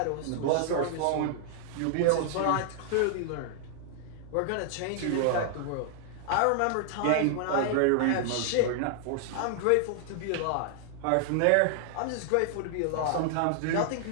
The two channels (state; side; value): different; both; correlation 0.00